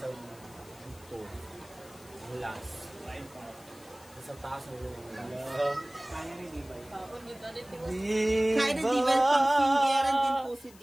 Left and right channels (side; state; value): left; noise; hiss, 23 dB below the sound